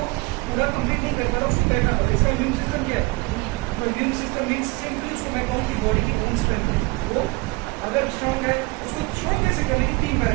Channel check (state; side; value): quieter; left; 25.4 dB